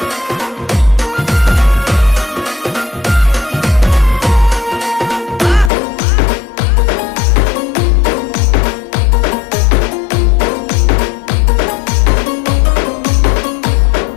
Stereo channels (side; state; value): right; drops out; at 5.7 s